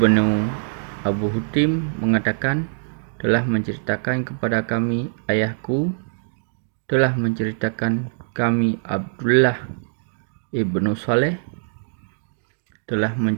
Abu Hutim mengatakan, telah menceritakan kepada kami ayahku, telah menceritakan kami Abdullah ibnu Saleh, telah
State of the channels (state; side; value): silent; left; digital silence